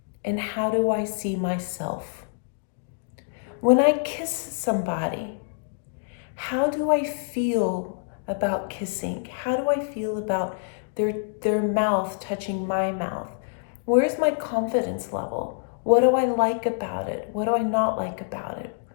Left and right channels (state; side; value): silent; right; digital silence